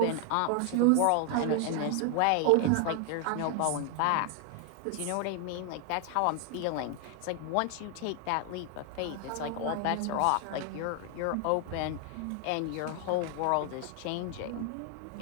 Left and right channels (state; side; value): different; both; correlation 0.00